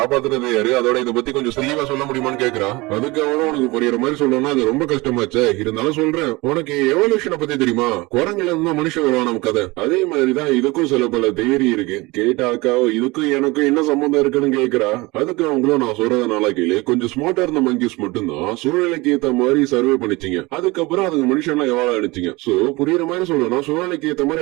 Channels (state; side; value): quieter; left; 23.0 dB